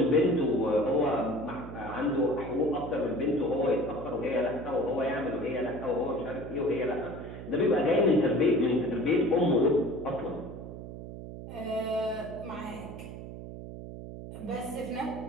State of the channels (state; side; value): noise; right; hum, 11 dB below the sound